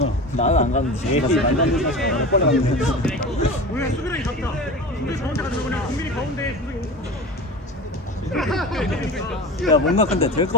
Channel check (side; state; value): both; normal; correlation 0.32